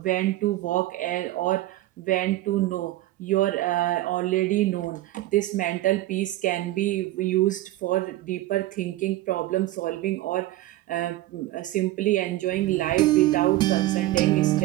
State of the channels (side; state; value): left; quieter; 16.2 dB